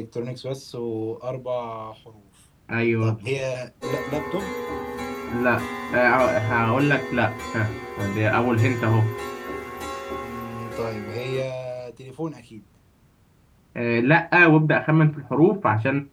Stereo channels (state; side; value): identical; both; correlation 1.00